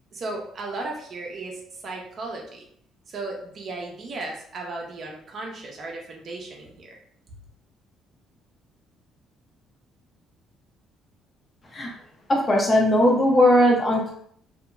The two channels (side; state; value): both; normal; correlation 0.75